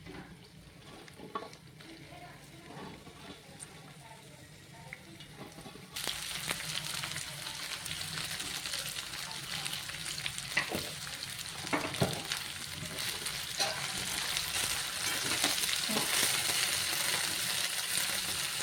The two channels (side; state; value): both; identical; correlation 1.00